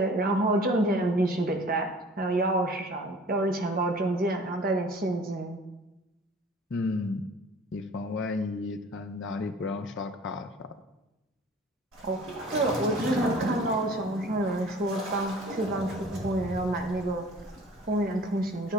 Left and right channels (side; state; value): both; normal; correlation 0.48